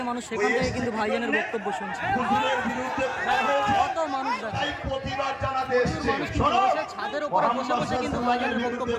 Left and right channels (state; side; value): identical; both; correlation 1.00